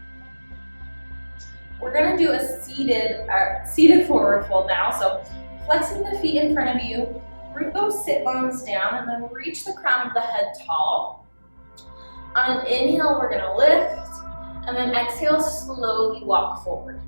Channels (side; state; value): both; inverted; correlation -1.00